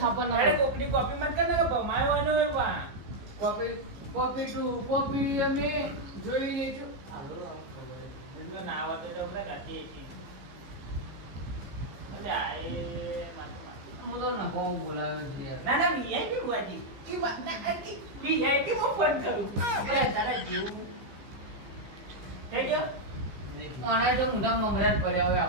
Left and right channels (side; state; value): left; late; 15 ms